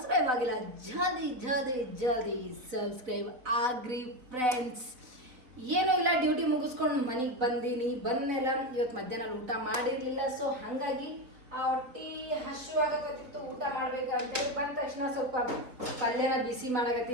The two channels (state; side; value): late; left; 4.1 ms